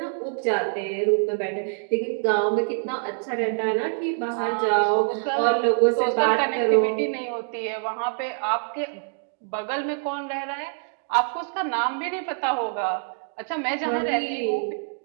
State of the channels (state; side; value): silent; left; digital silence